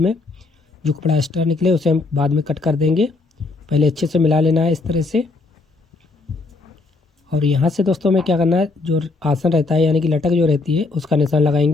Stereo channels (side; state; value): right; quieter; 3.6 dB